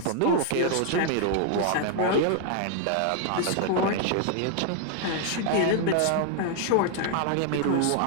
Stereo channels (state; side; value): different; both; correlation 0.00